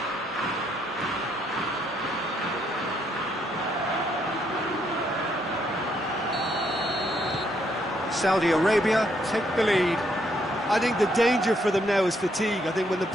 Saudi Arabia take the lead. I think the danger for them now is fatigue. I think when the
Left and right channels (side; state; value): both; normal; correlation 0.73